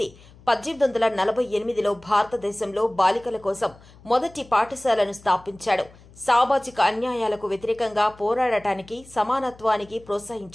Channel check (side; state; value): left; noise; hum, 24 dB below the sound